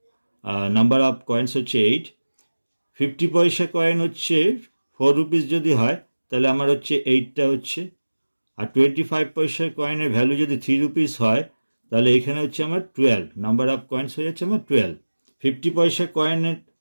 নাম্বার অফ কয়েন্স হচ্ছে 8। 50 পয়সা কয়েন হচ্ছে 4 রুপিস যদি হয় তাহলে আমার হচ্ছে 8টা হচ্ছে, আর 25 পয়সার কয়েনের ভ্যালু যদি 3 রুপিস হয় তাহলে এখানে হচ্ছে আমার 12, নাম্বার অফ কয়েন্স হয়ে যাচ্ছে আমার 12। 50 পয়সা কয়েনের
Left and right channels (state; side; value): inverted; both; correlation -1.00